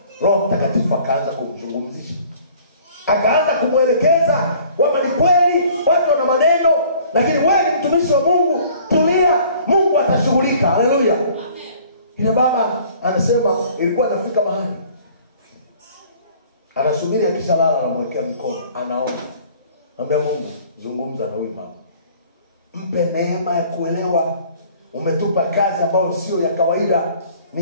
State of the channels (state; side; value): inverted; both; correlation -0.53